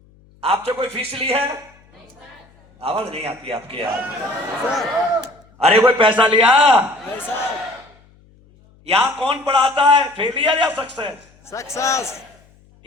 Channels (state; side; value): noise; left; hum, 29 dB below the sound